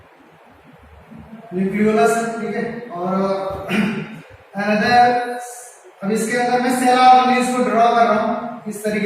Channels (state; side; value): identical; both; correlation 1.00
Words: Nucleolus, ठीक है। और अनदर, अब इसके अंदर मैं सेल ऑर्गेनेल्स को ड्रॉ कर रहा हूं इस